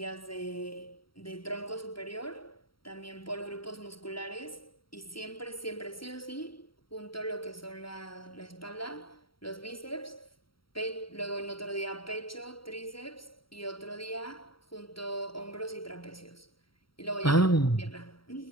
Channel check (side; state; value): right; late; 0.74 ms